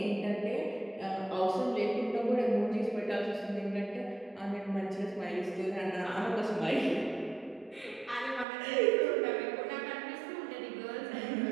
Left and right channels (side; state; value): left; drops out; at 8.5 s